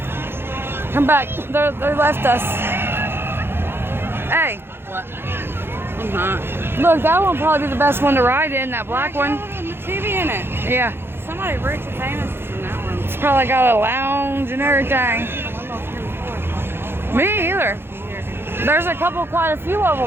come back. They left us. Hey. What? I'm not. Look, that one will probably be the best one to ride in, that black one. The TV in it. Yeah. Somebody rich and famous is in that one. It's probably got a lounge and everything. Me either. There's a couple, quite a few of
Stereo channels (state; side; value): late; left; 0.11 ms